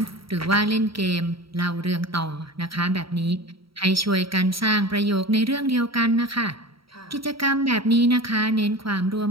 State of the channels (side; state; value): left; late; 0.75 ms